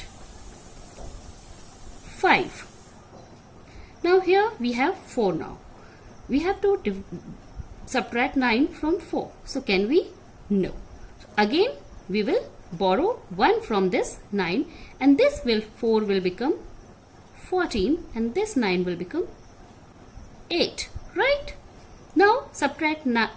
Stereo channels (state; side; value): identical; both; correlation 1.00